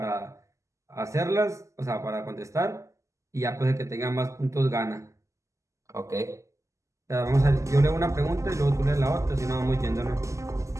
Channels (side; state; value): left; late; 0.15 ms